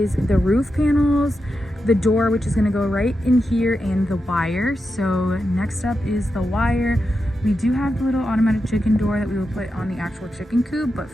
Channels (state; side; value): normal; both; correlation 0.88